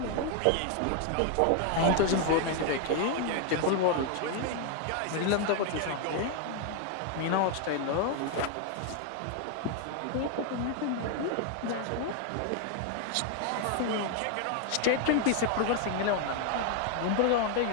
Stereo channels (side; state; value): both; different; correlation 0.00